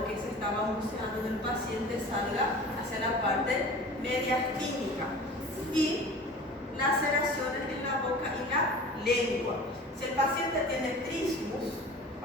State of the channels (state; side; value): normal; both; correlation 0.40